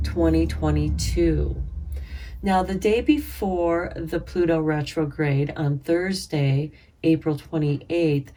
2022. Now, the day before the Pluto retrograde on Thursday, April 28th,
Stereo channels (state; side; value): identical; both; correlation 1.00